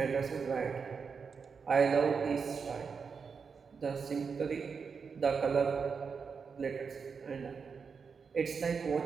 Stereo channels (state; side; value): quieter; left; 5.7 dB